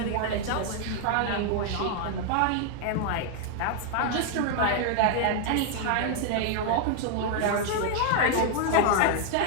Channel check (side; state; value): both; different; correlation 0.00